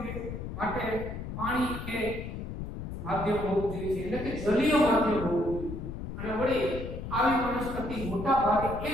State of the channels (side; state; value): left; noise; rumble, 7 dB below the sound